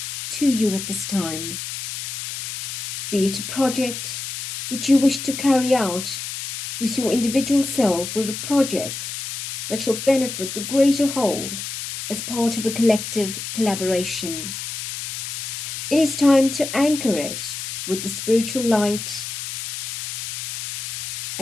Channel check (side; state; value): left; noise; hiss, 6 dB below the sound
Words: to you at this time. Be it a project which you wish to carry out with your individual self, or a project that shall benefit the greater whole as part of a collective collaboration. It is time to anchor it with the spiritual light,